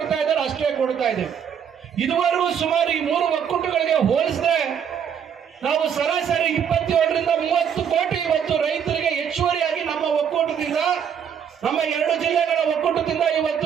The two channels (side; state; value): left; quieter; 8.0 dB